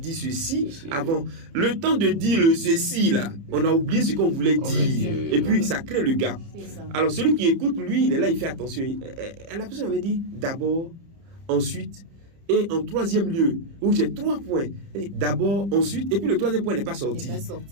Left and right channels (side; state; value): left; late; 30 ms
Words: ceci avant. Le temps de dire le ceci, là, on a oublié ce qu'on voulait dire. Et puis, ça crée le gap. Alors, celui qui écoute, lui, il est là, il fait attention. La personne avait dit d'abord, ensuite, et en troisième lieu, où j'ai 3 points, d'abord, ensuite, et puis le troisième point n'est pas sorti.